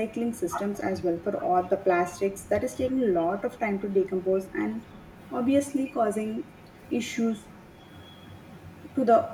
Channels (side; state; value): both; identical; correlation 1.00